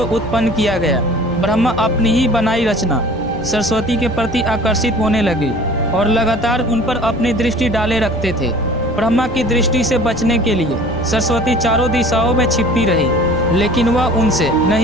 उत्पन्न किया गया। ब्रह्मा अपनी ही बनाई रचना सरस्वती के प्रति आकर्षित होने लगे और लगातार उन पर अपनी दृष्टि डाले रखते थे। ब्रह्मा की दृष्टि से बचने के लिए सरस्वती चारों दिशाओं में छिपती रही, लेकिन वह उनसे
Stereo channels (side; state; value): both; normal; correlation 0.46